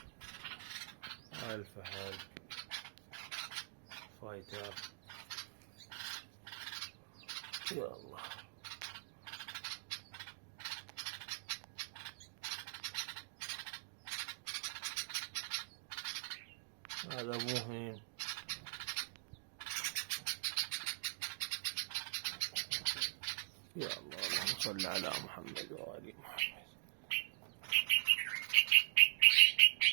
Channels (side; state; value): left; silent; digital silence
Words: الفهد فايتر. يا الله، هذا مهم. يا الله، اللهم صل على محمد وآل محمد.